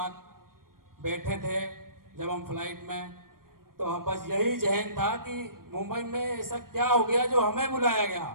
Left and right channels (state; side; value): late; left; 0.92 ms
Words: बैठे थे जब हम फ्लाइट में, तो हम बस यही जहन था कि मुंबई में ऐसा क्या हो गया जो हमें बुलाया गया।